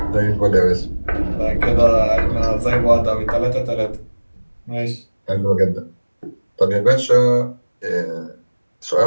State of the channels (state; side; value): inverted; both; correlation -1.00